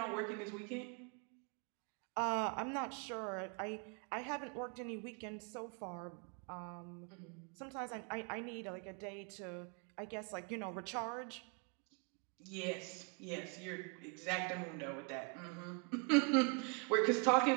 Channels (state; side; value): quieter; left; 36.1 dB